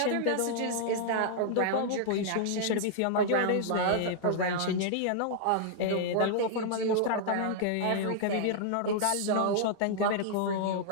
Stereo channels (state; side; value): different; both; correlation -0.01